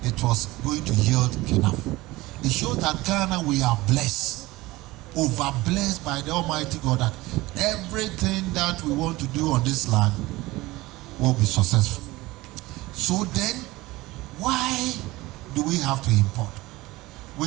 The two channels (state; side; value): quieter; left; 19.7 dB